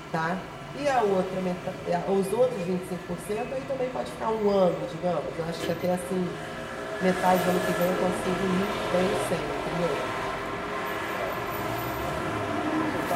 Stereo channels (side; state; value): both; identical; correlation 1.00